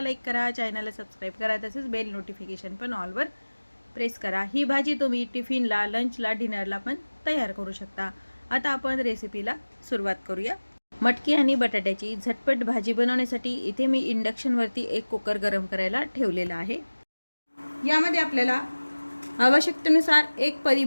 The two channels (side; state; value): both; inverted; correlation -1.00